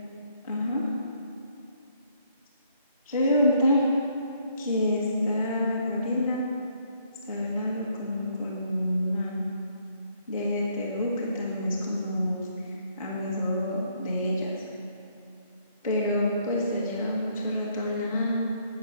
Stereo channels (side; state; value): both; inverted; correlation -0.69